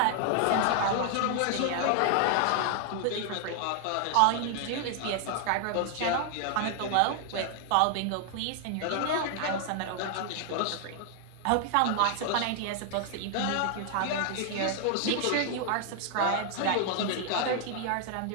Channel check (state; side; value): different; both; correlation 0.00